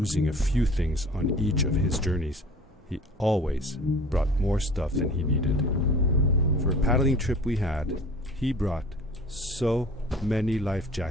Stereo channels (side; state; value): both; normal; correlation 0.45